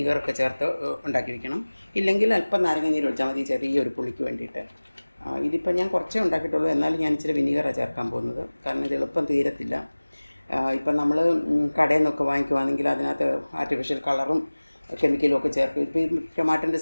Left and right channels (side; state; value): both; inverted; correlation -1.00